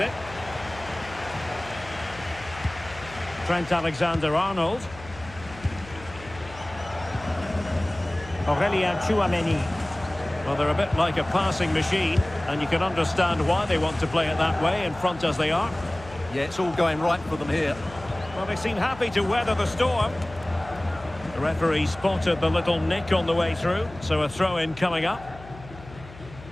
Trent Alexander-Arnold. Aurélien Tchouameni. Well, they're a bit like a passing machine, and you can understand why they want to play it that way, in front as they are. Yeah, it's all going right for them here. Well, they seem happy to weather the storm. The referee spotted the little nick on the way through, so a throw-in coming up.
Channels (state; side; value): noise; left; hum, 17 dB below the sound